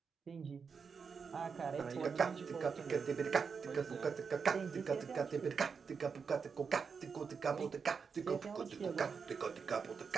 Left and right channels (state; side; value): quieter; left; 5.7 dB